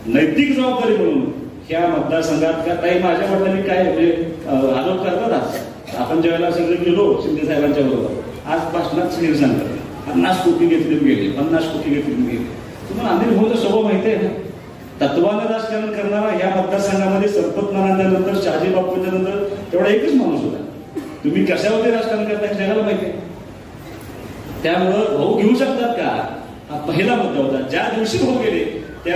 नैतिक जबाबदारी म्हणून ह्या मतदारसंघात का काही माझ्या वडिलांनी काय आरोप करतात. आज आपण ज्यावेळेला सगळे गेलो शिंदे साहेबांच्या बरोबर, आज भाषणात सगळे सांगतात 50 कोटी घेतले गेले, 50 कोटी घेतले गेले. तुम्हाला अनिल भाऊचा स्वभाव माहिती आहे ना, तत्वानं राजकारण करणारा ह्या मतदारसंघामध्ये संपत नानांच्या शहाजी बापूंच्या नंतर तेवढा एकच माणूस होता. तुम्ही कशावरती राजकारण करता हे जगाला माहिती आहे. त्यामुळं भाऊ घेऊ शकतात का, हा पहिला मुद्दा होता. ज्या दिवशी भाऊ गेले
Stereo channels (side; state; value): both; identical; correlation 1.00